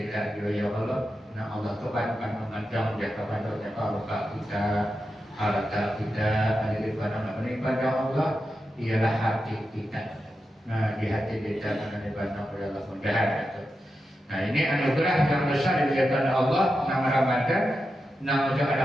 juga ya Allah. Nah Allah itu kan memandang dia kepada luka kita, harta kita ada di pada Allah ialah hati kita. Nah di hati kita akan dipandang oleh Allah mudah-mudahan itu. Nah ini anugerah yang besar diberikan Allah nama Ramadan. Nah udah ada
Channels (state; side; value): normal; both; correlation 0.89